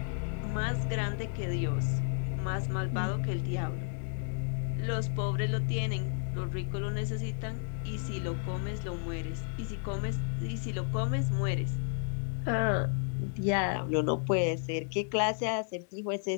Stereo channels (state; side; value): silent; right; 56 dB below the other